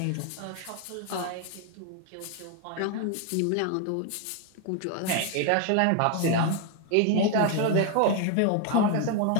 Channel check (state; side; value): different; both; correlation 0.01